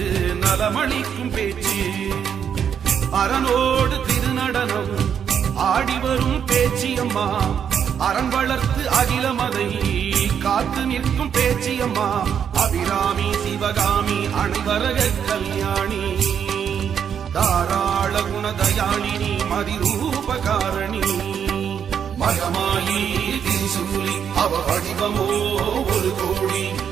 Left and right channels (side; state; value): left; quieter; 8.0 dB